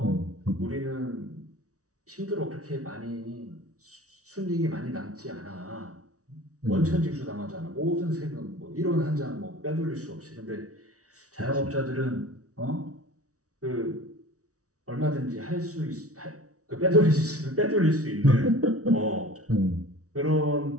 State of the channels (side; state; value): left; late; 0.66 ms